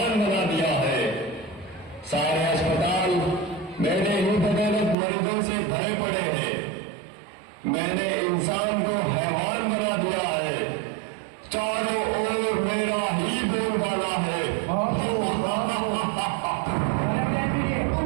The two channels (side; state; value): left; drops out; at 5.0 s